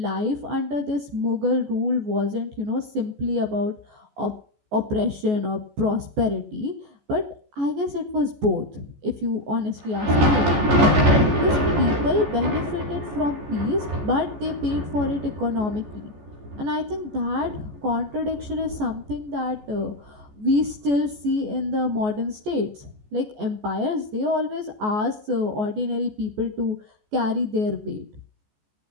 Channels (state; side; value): late; left; 14 ms